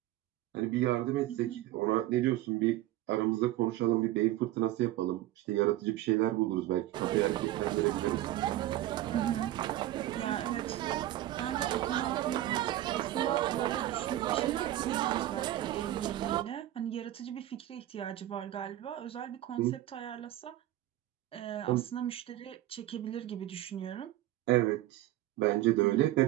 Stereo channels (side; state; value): left; quieter; 14.6 dB